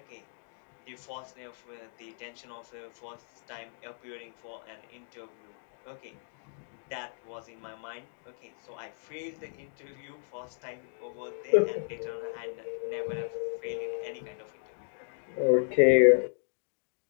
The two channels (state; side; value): silent; right; digital silence